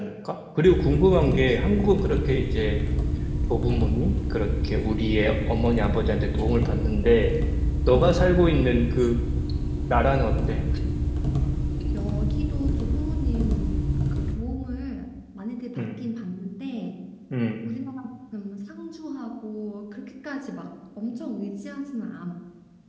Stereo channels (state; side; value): identical; both; correlation 1.00